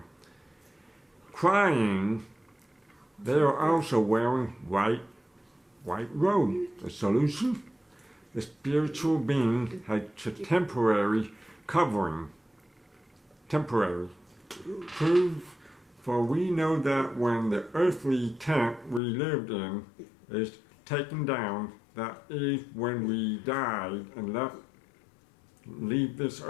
crying, they are also wearing white robes. The solution? The spiritual being had a temporary covering. Temporary. Prove, for we know that when the earthly tent we lived in is taken down, that is when we died and leave this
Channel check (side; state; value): right; drops out; at 19.0 s